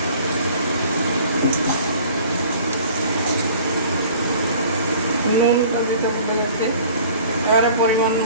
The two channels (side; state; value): both; inverted; correlation -0.49